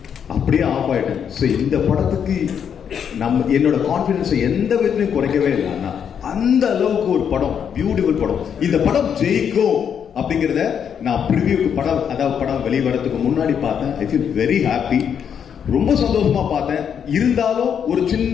அப்படியே ஆஃப் ஆயிட்டேன். ஸோ இந்த படத்துக்கு என்னோட கான்பிடன்ஸை எந்த விதத்திலையும் குறைக்கவே இல்லை. அண்ணா, அந்த அளவுக்கு ஒரு படம், பியூட்டிஃபுல் படம். இந்த படம் ஜெயிக்கும் அப்படிங்கிறத நான் ப்ரிவியூக்கு படம் வெளிவரத்துக்கு முன்னாடி பார்த்தேன். I feel very happy. ரொம்ப சந்தோஷமா பார்த்தேன். இருந்தாலும் ஒரு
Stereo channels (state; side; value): quieter; right; 7.9 dB